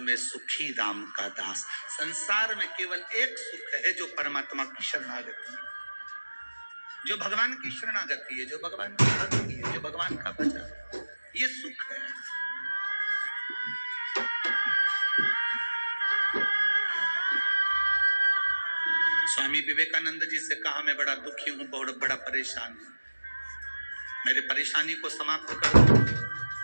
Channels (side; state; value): both; inverted; correlation -1.00